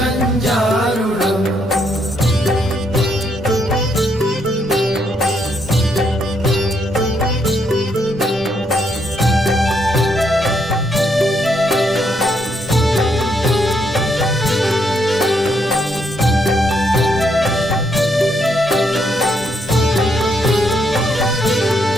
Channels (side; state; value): both; normal; correlation 0.74